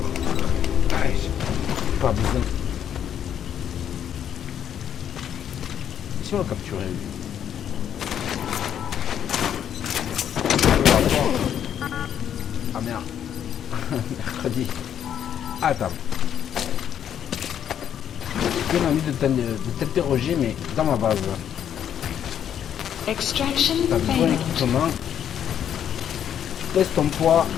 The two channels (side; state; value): right; quieter; 9.4 dB